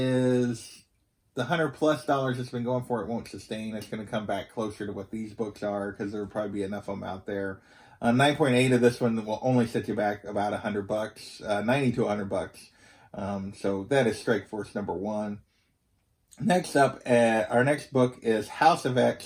the $100+ it's been going for, it won't sustain. It's going to come back closer to what these books are, because there will probably be enough of them out there. 9.8 of this one will only set you back about $100, 90 to $100. So that is Strike Force number 1. Next up, our next book is House of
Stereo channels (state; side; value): identical; both; correlation 1.00